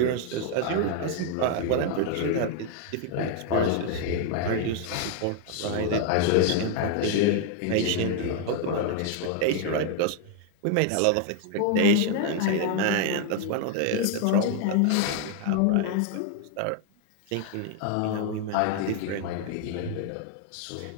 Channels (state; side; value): different; both; correlation 0.00